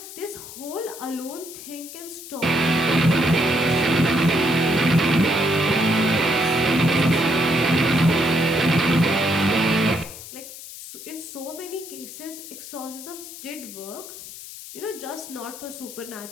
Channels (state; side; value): noise; left; hiss, 13 dB below the sound